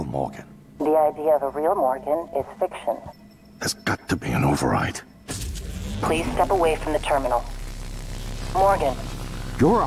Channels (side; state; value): both; identical; correlation 1.00